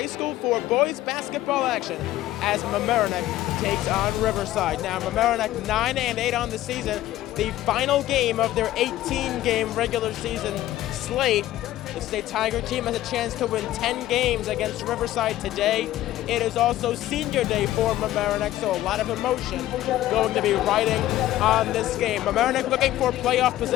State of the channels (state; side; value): quieter; right; 14.5 dB